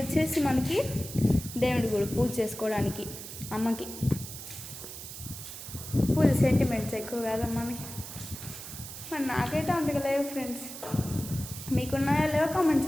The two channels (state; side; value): noise; right; hiss, 11 dB below the sound